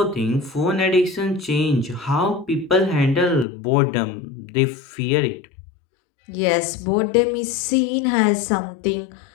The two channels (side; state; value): right; drops out; at 3.5 s